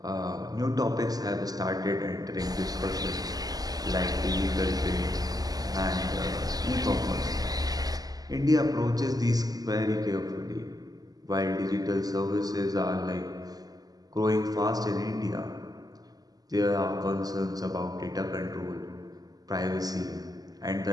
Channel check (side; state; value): left; late; 0.18 ms